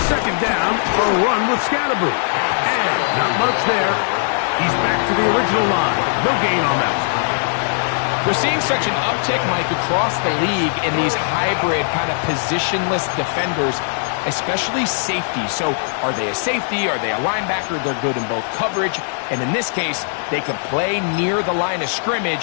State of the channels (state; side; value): silent; right; digital silence